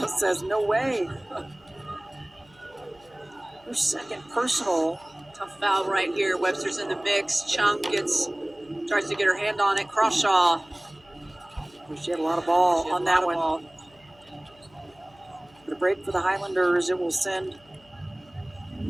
says, no way. Her second personal. Tough foul right here. Webster's in the mix. Chung tries to get her hand on it. Crawshaw. She had a lot of ball on that one. Ball. But a break for the Highlanders. It will send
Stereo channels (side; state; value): left; noise; hum, 29 dB below the sound